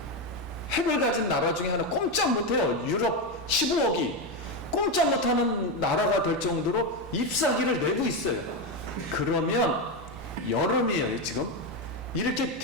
핵을 가진 나라 중에 하나 꼼짝 못해요. 유럽 15억이 꼼짝 못하는 나라가 될 정도로 잎사귀를 내고 있어요. 그러면 여름이에요. 지금 이렇게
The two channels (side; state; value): both; normal; correlation 0.11